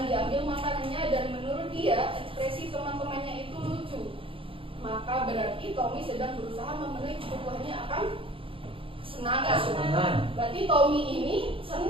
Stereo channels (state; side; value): late; left; 0.26 ms